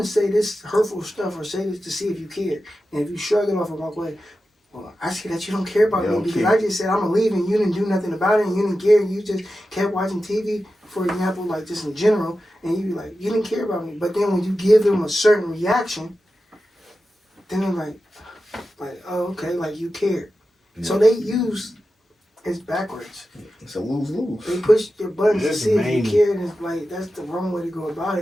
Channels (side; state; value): both; normal; correlation 0.92